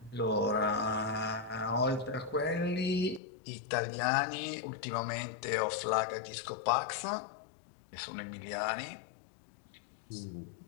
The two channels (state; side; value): drops out; right; at 3.2 s